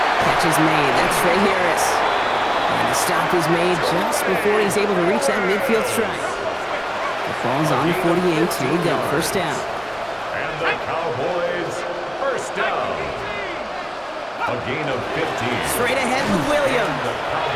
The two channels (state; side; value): identical; both; correlation 1.00